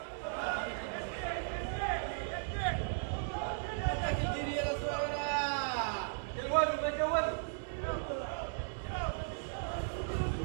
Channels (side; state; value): left; silent; 53 dB below the other